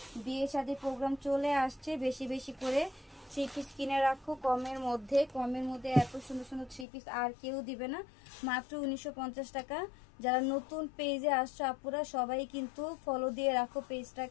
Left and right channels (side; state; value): right; drops out; at 6.9 s